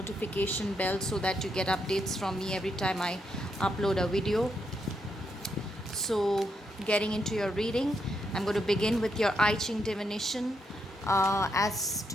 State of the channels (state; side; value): normal; both; correlation 0.80